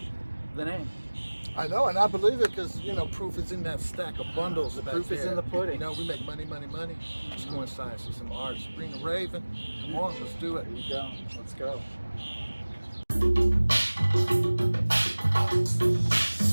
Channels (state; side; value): inverted; both; correlation -1.00